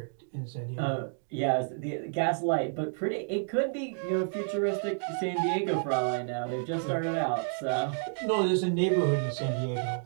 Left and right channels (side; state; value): left; silent; digital silence